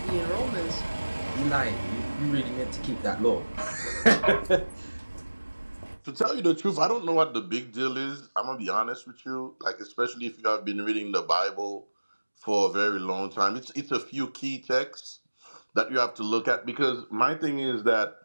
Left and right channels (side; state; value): both; inverted; correlation -1.00